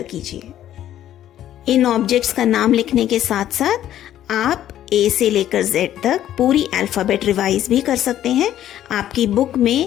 कीजिए। इन ऑब्जेक्ट्स का नाम लिखने के साथ साथ आप ए से लेकर जेड तक पूरी अल्फ़ाबेट रिवाइज भी कर सकते हैं। आपकी बुक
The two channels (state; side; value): quieter; right; 11.9 dB